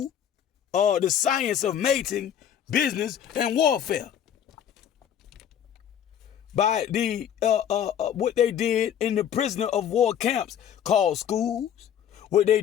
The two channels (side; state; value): right; quieter; 9.4 dB